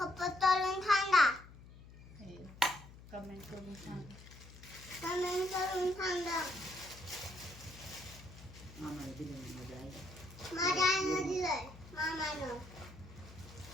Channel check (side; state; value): left; noise; hum, 18 dB below the sound